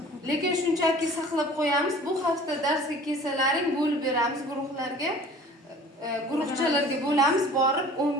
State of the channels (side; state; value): both; normal; correlation 0.46